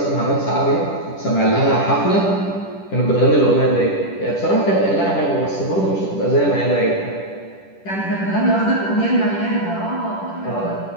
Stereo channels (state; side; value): late; right; 10 ms